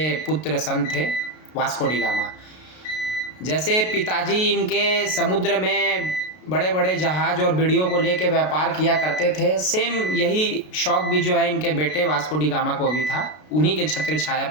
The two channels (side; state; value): right; late; 33 ms